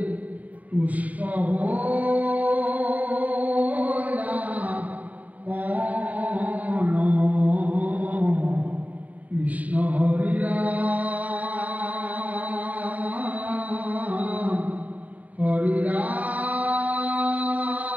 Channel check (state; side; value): late; left; 0.073 ms